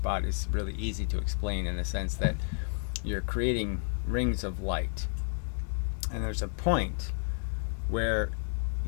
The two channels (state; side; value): silent; right; 57 dB below the other